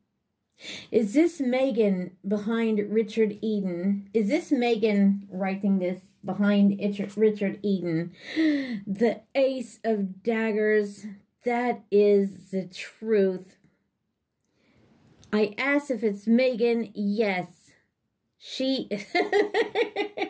Is this Meghan behind Richard Eden? Is this Meghan writing this behind Richard Eden? The Ace of Daggers. That is the truth. I asked if it's Meghan. Yes. She...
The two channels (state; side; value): identical; both; correlation 1.00